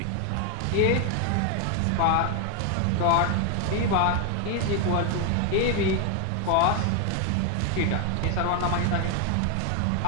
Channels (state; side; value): different; both; correlation 0.01